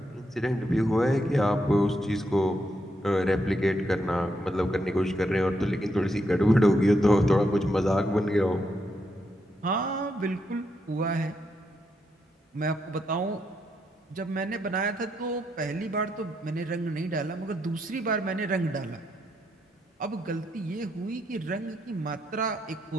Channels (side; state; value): both; normal; correlation 0.80